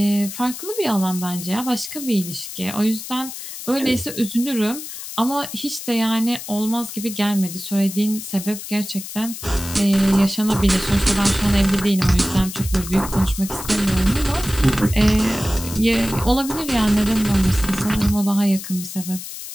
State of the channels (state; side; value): noise; left; hiss, 10 dB below the sound